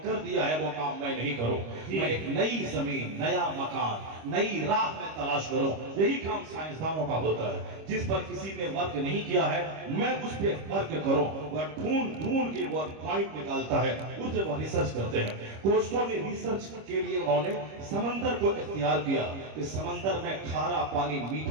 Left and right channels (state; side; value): late; left; 26 ms